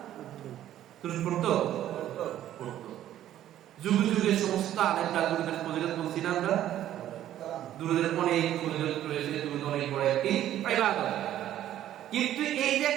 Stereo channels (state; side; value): quieter; left; 12.2 dB